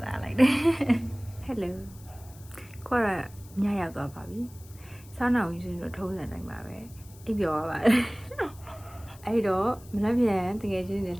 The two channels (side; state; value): left; noise; hiss, 23 dB below the sound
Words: လာလိုက်တယ် Hello ခေါ်ရညရောက်သွားပါပြီစားနောက်ယူဆိုတော့ထုံးစံတိုင်းပါပဲအိပ်ပျော်ရပါတယ်အဲ့တော့မနက်ဖြန်တကယ်ချင်းနေ